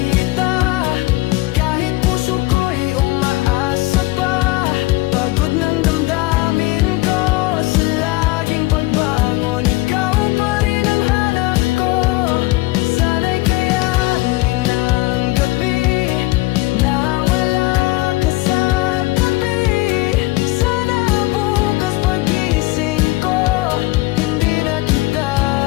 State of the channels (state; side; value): quieter; right; 20.4 dB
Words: kahit puso ko'y umaasa pa. Pagod ng damdamin ko sa laging pagbangon, ikaw pa rin ang hanap ko. Sana'y kayanin ng gabi na wala ka sa tabi. Sana bukas pagising ko, hindi na kita